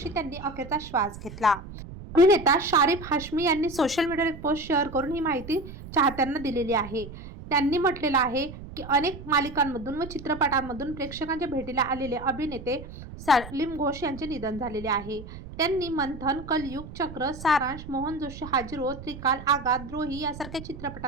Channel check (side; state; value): right; noise; rumble, 13 dB below the sound